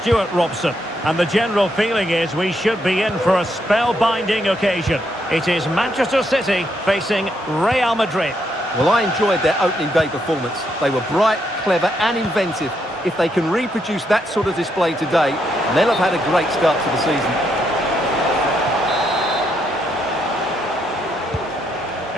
Robson. And the general feeling is we should be in for a spellbinding occasion. It is Manchester City facing Real Madrid. Well, I enjoyed their opening day performance. They were bright, clever and inventive. If they can reproduce that sort of display today, they'll have had a great start to the season.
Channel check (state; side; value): normal; both; correlation 0.77